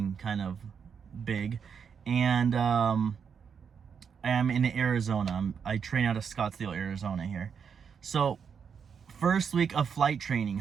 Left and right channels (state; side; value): quieter; left; 6.8 dB